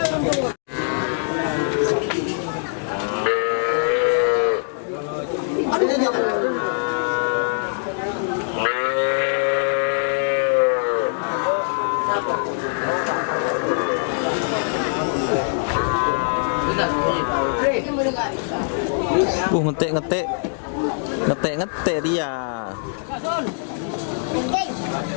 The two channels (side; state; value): right; silent; digital silence